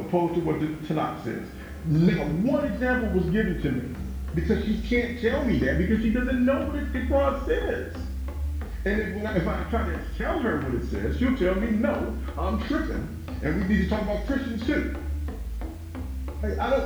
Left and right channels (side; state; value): both; identical; correlation 1.00